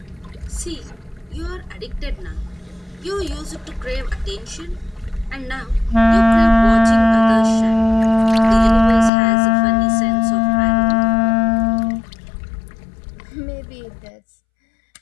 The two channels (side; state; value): right; drops out; at 9.1 s